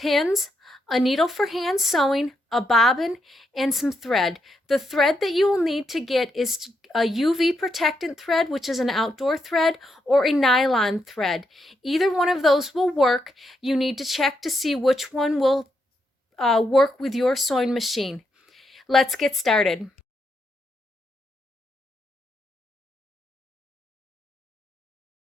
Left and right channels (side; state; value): both; normal; correlation 0.81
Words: a needle for hand sewing, a bobbin, and some thread. The thread that you will need to get is a UV protectant thread, which is an outdoor thread, or a nylon thread. Either one of those will work. You need to check to see which one will work with your sewing machine. Let's get started.